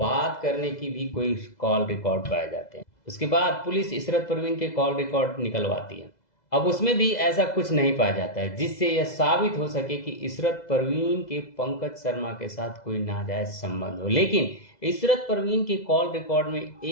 करने की भी कोई कॉल रिकॉर्ड पाए जाते हैं। उसके बाद पुलिस इशरत परवीन के कॉल रिकॉर्ड निकलवाती है। अब उसमें भी ऐसा कुछ नहीं पाया जाता है जिससे यह साबित हो सके कि इशरत परवीन के पंकज शर्मा के साथ कोई नाजायज संबंध हो। लेकिन इशरत परवीन के कॉल रिकॉर्ड में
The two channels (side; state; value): right; late; 2.0 ms